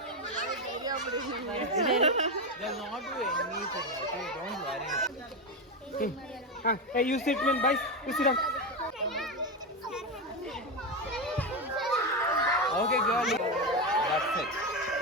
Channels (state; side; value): normal; both; correlation 0.13